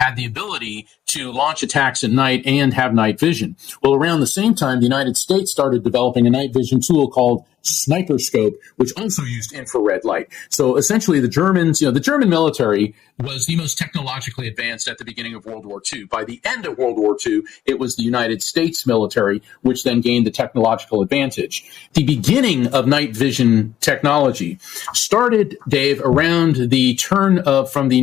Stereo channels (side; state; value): right; quieter; 11.4 dB